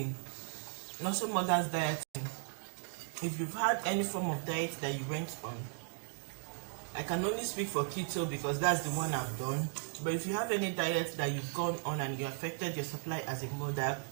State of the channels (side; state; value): left; silent; 54 dB below the other